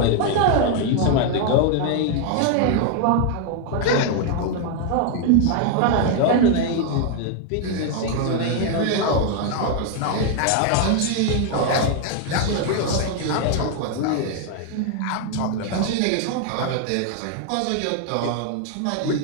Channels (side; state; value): both; different; correlation 0.00